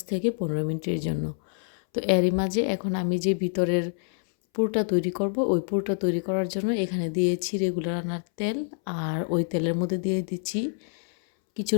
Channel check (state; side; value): silent; right; 60 dB below the other